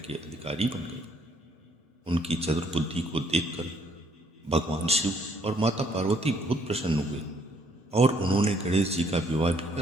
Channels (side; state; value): both; normal; correlation 0.66